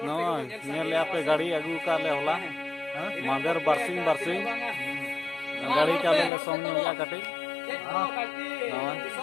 पे गाड़ी अगू का ले होला मादर बरसिंग गाड़ी चाले ले सोम नुया कटे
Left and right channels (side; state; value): right; drops out; at 6.3 s